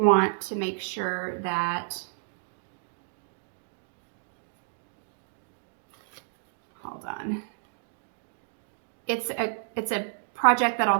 want to make sure that, hold on. It's a project that'll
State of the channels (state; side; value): silent; left; digital silence